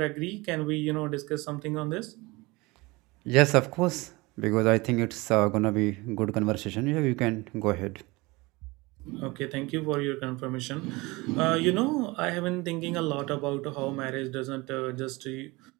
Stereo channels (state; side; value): quieter; left; 23.4 dB